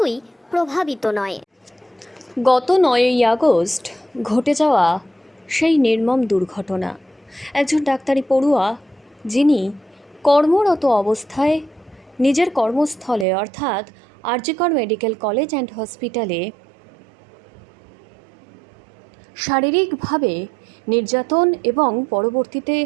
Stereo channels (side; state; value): left; drops out; at 13.2 s